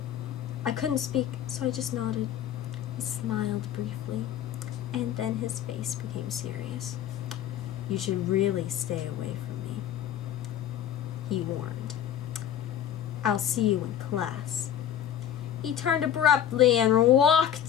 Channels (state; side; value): quieter; right; 10.2 dB